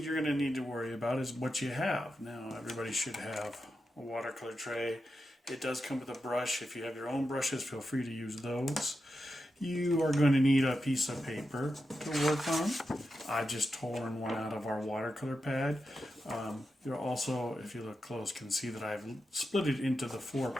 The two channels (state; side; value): normal; both; correlation 0.88